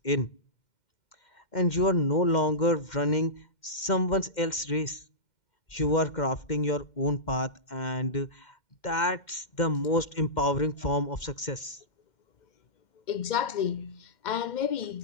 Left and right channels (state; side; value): late; right; 2.1 ms